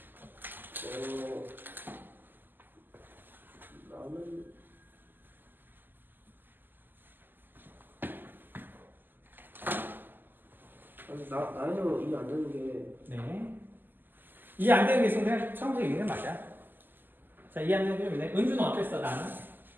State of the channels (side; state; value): left; late; 0.091 ms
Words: 나는 이해 안 되는 게 네. 이해 안 되는 게 있으면 그냥 처음부터 읽는 게 맞아. 자, 이해 안 되는 게 있네. 은주는 어땠어, 나는?